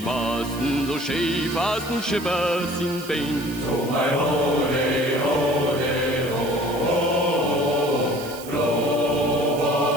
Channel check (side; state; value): right; noise; hiss, 15 dB below the sound